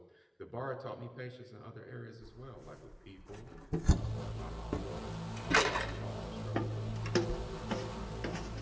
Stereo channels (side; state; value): both; identical; correlation 1.00